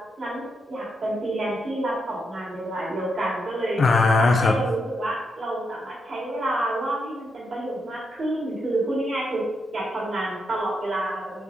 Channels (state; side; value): normal; both; correlation 0.82